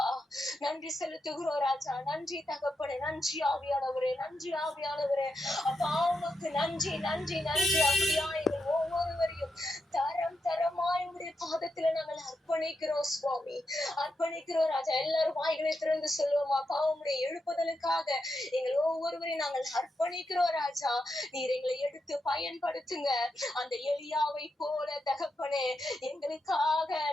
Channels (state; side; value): normal; both; correlation 0.85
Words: நன்றி செலுத்துகிறோம் ராஜா. நன்றி தகப்பனே. நன்றி ஆவியானவரே. நன்றி ஆவியானவரே. அப்பா உமக்கு நன்றி நன்றி நன்றி. அப்படியா எங்கள் ஒவ்வொருவரையும் தரம் தரமாய் உடைய பாதத்துல நாங்கள் அர்ப்பணிக்கிறோம் சுவாமி, அர்ப்பணிக்கிறோம் ராஜா. எல்லாரும் வாய்களை திறந்து சொல்லுவோம். அப்பா உம்முடைய எழுப்புதலுக்காக எங்கள் ஒவ்வொருவரையும் நாங்கள் அர்ப்பணிக்கிறோம் ராஜா. நீர் எங்களை எடுத்து பயன்படுத்துங்க. அந்த எலியாவை போல தகப்பனே எங்களுக்காக